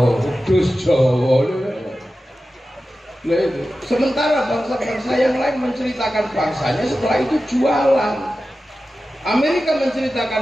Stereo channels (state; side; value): normal; both; correlation 0.94